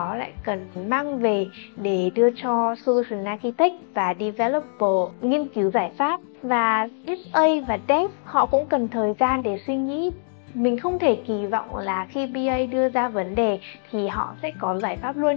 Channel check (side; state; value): right; silent; digital silence